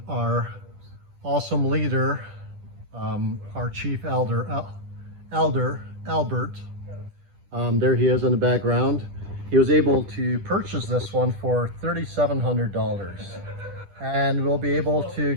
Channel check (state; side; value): late; left; 10 ms